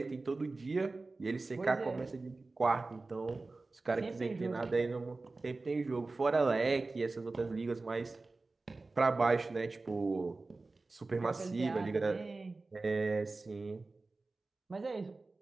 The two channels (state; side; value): quieter; left; 3.5 dB